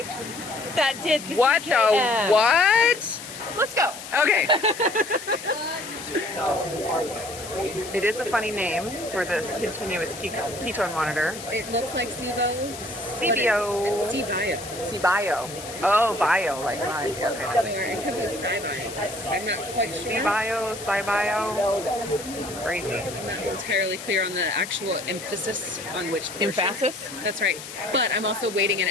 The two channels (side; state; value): left; noise; hiss, 12 dB below the sound